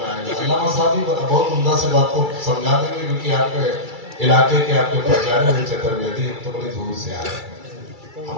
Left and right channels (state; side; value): late; left; 2.3 ms